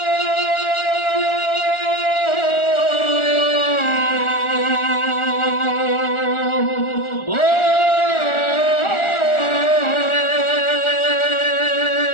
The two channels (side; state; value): right; late; 1.4 ms